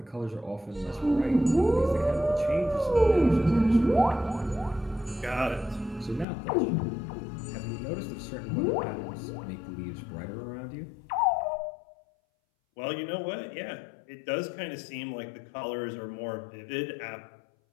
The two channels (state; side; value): drops out; right; at 6.2 s